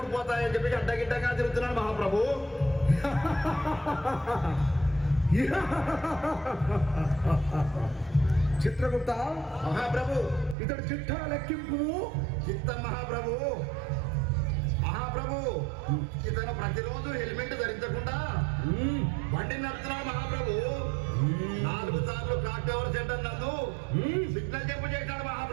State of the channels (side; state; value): left; drops out; at 10.6 s